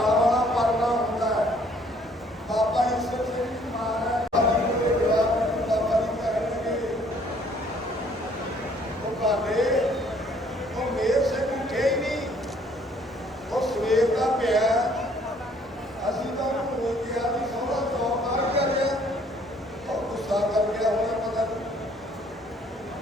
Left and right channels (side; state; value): both; normal; correlation 0.61